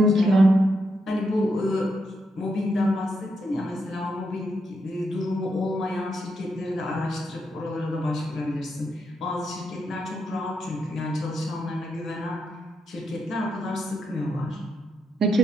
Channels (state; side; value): normal; both; correlation 0.81